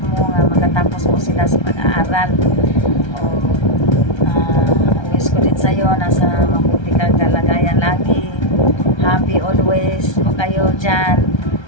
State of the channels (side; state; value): right; late; 1.3 ms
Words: mo nga makatapos mo sila sa pag-aaral. Wish ko din sa'yo nasa mabuti kang kalagayan lagi. Happy always po kayo dyan.